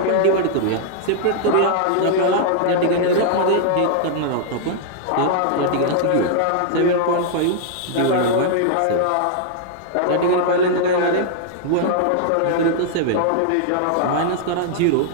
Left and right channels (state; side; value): different; both; correlation -0.01